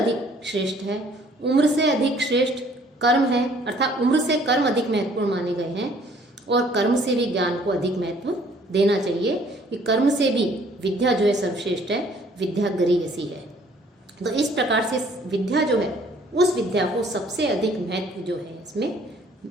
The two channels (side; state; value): both; normal; correlation 0.59